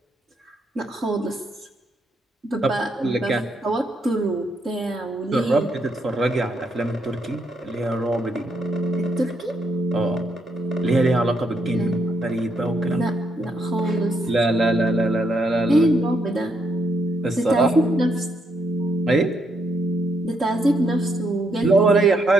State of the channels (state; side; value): normal; both; correlation 0.76